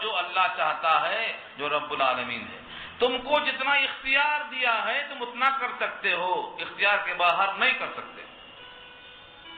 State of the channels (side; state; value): both; identical; correlation 1.00